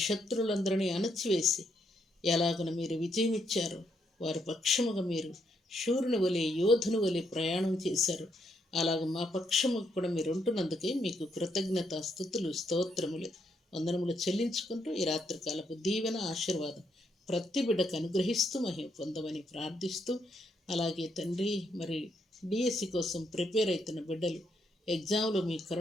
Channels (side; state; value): both; normal; correlation 0.76